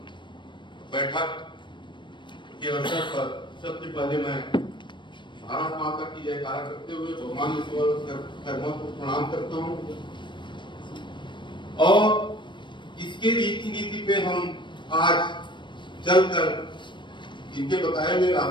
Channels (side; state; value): right; late; 0.23 ms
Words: बैठक के अवसर पर सबसे पहले मैं भारत माता की जयकारा करते हुए भगवान कर्मों को प्रणाम करता हूँ और इसके रीति नीति पे हम आज चलकर इनके बताए हुए